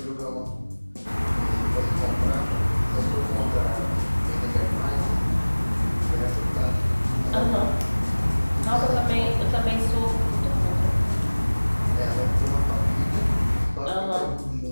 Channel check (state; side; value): inverted; both; correlation -1.00